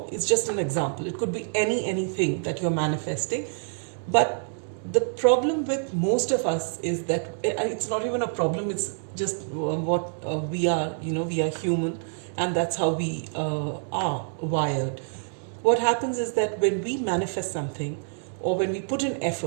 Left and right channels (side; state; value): left; silent; digital silence